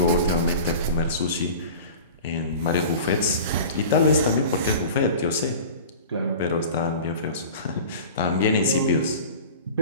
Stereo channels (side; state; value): both; inverted; correlation -0.38